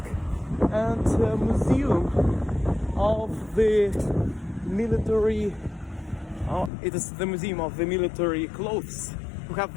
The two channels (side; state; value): right; drops out; at 6.7 s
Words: and museum of the military. It is the museum of the military clothes. We have